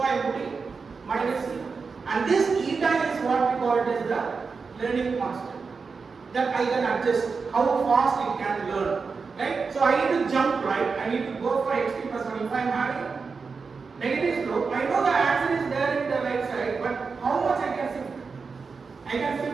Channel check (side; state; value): left; quieter; 4.9 dB